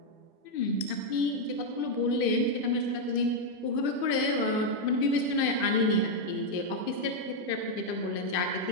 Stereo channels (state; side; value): late; right; 2.5 ms